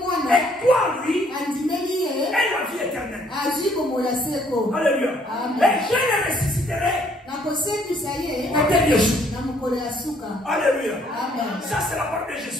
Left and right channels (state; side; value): normal; both; correlation 0.65